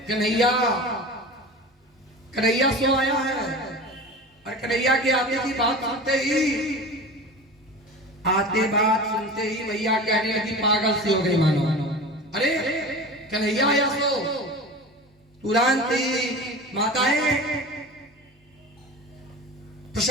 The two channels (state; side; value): normal; both; correlation 0.34